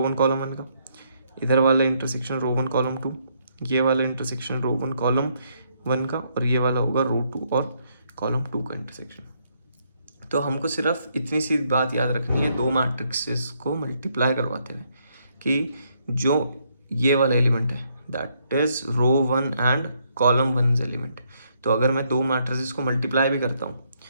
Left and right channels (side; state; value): both; inverted; correlation -0.73